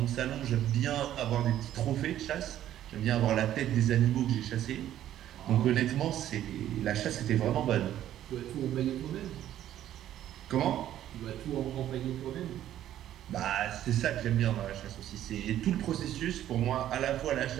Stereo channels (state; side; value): quieter; left; 12.0 dB